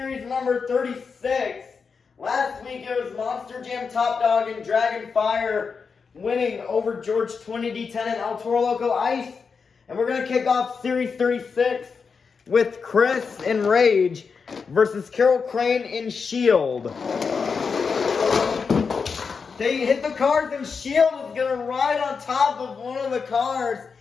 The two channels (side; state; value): right; quieter; 5.4 dB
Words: number 36. Last week it was Monster Jam Top Dog and Dragon Fire winning over George 20D10 and El Toro Loco Ice. And we're going to kick off Series 36 with Chris in Rage versus Carol Crane in Shield. They hit the cars and Shield is going to ride on top of one of the cars